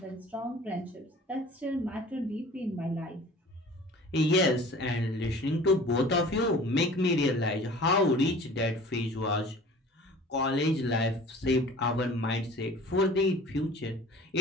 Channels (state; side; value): normal; both; correlation 0.45